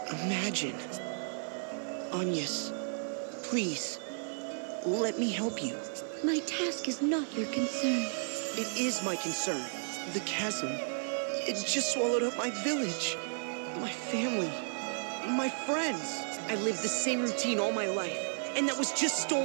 imagine. Agnes, please, let me help you. My task is not your concern. It is my concern. The chasm, it just swallowed up my village, my family, my friends. I lived the same routine all my life, and that was just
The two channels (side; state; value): left; silent; 55 dB below the other